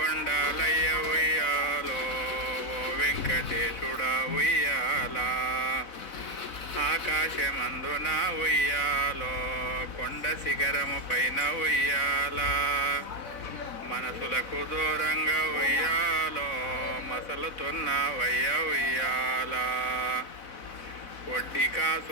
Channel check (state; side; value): late; right; 4.0 ms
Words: ఉయ్యాలో ఓ వెంకటేశుడా ఉయ్యాలా ఆకాశమందున ఉయ్యాలో కొండ శిఖరము పైన ఉయ్యాలా మనసులకు దూరంగా ఉయ్యాలో మసలుతున్నవయ్య ఉయ్యాలా వడ్డీ